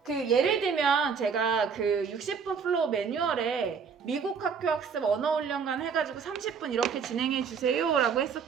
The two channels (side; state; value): left; quieter; 6.2 dB